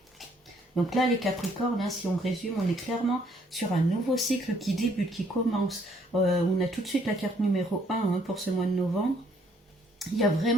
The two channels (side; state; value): both; normal; correlation 0.66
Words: Donc là, les Capricornes, hein, si on résume, on est clairement sur un nouveau cycle qui débute, qui commence. On a tout de suite la carte numéro 1 hein, pour ce mois de novembre. Il y a